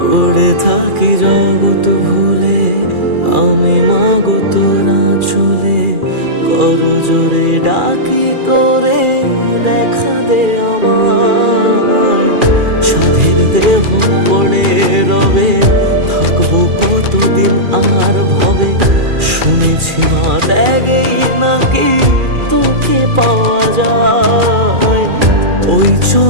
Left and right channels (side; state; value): left; late; 2.4 ms